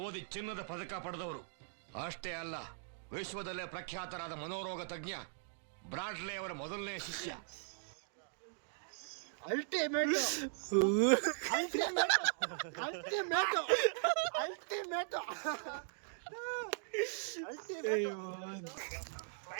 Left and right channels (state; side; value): silent; left; digital silence